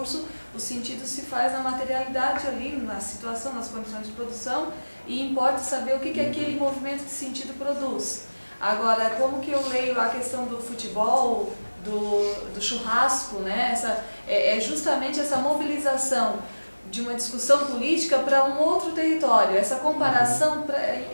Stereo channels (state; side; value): inverted; both; correlation -1.00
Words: o sentido se faz na materialidade ali, na situação, nas condições de produção, e importa saber o que aquele movimento de sentido produz. Agora, como que eu leio a questão do futebol, do churrasco, né? É justamente essa mobilização de uma discussão política para um outro território. Essa comparação,